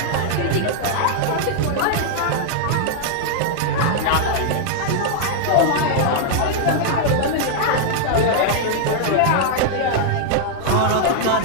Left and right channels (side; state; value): both; different; correlation -0.01